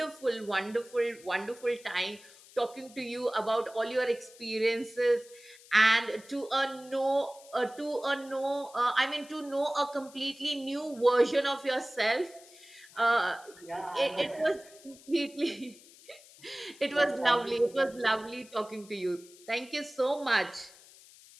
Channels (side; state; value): left; noise; hiss, 22 dB below the sound